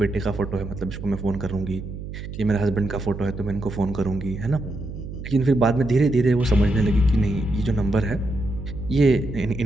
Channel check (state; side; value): noise; right; hum, 9 dB below the sound